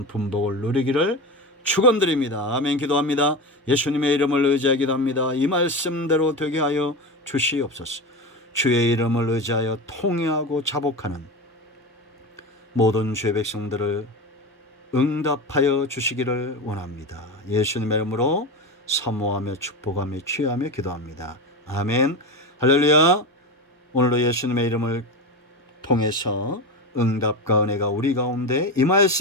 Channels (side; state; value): both; normal; correlation 0.22